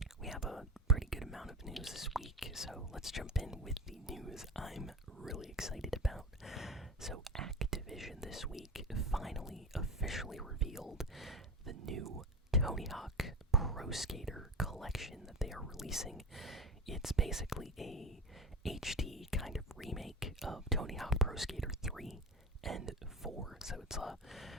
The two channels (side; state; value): both; normal; correlation 0.28